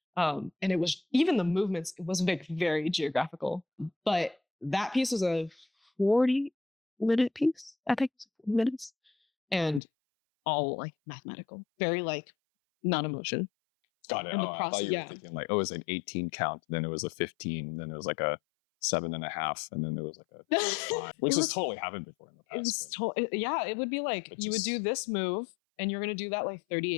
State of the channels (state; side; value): drops out; right; at 9.8 s